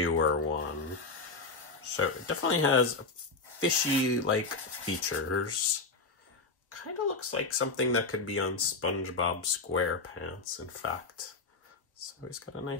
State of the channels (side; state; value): right; quieter; 3.8 dB